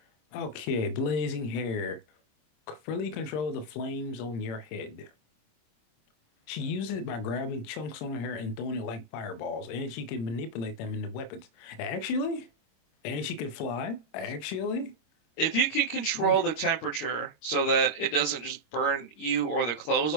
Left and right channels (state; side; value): late; right; 26 ms